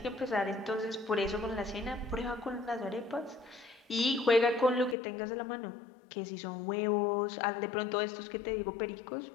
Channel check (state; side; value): drops out; right; at 5.0 s